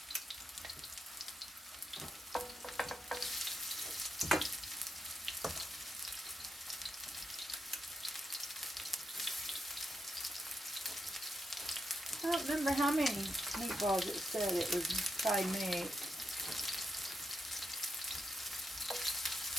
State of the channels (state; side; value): normal; both; correlation 0.83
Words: I don't remember how many meatballs it said it would probably make.